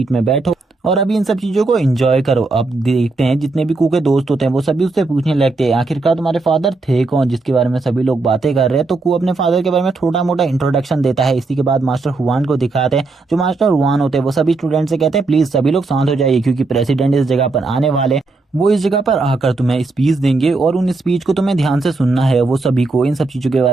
में बैठो और अभी इन सब चीजों को एंजॉय करो। अब देखते हैं जितने भी कू के दोस्त होते हैं वो सभी उससे पूछने लगते हैं, आखिरकार तुम्हारे फादर थे कौन जिसके बारे में सभी लोग बातें कर रहे हैं। तो कू अपने फादर के बारे में छोटा मोटा इंट्रोडक्शन देता है। इसी के बाद मास्टर हुआन को दिखाते हैं। जो मास्टर हुआन होते हैं वो सभी स्टूडेंट से कहते हैं, प्लीज सभी लोग शांत हो जाइए क्योंकि प्रेसिडेंट इस जगह पर आने वाले। वो इस जगह पर आकर तुम्हें स्पीच देंगे और उन स्पीच को तुम्हें ध्यान से सुनना है। वो सभी को इन सब चीज़ों के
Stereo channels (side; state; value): left; quieter; 3.5 dB